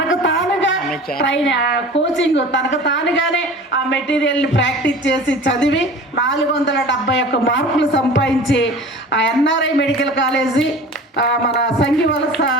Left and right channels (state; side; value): normal; both; correlation 0.40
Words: తానుగా కోచింగ్ తనకు తానుగానే ఆ మెటీరియల్ని ప్రాక్టీస్ చేసి చదివి 471 మార్కులు సంపాదించి ఆ ఎన్ఆర్ఐ మెడికల్ కాలేజీ మన సంఘివలస